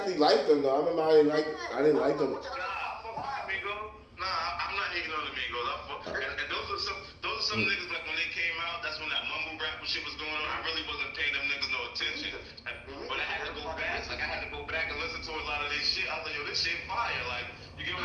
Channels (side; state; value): both; identical; correlation 1.00